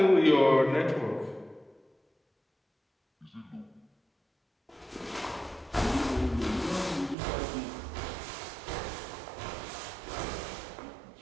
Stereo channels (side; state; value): left; drops out; at 7.2 s